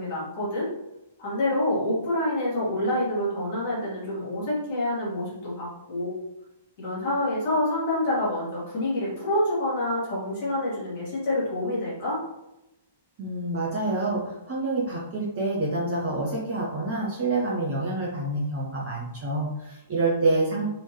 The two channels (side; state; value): both; inverted; correlation -0.49